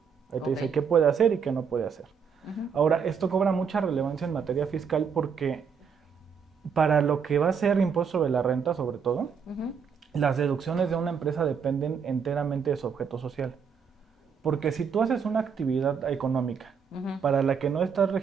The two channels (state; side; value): quieter; left; 6.5 dB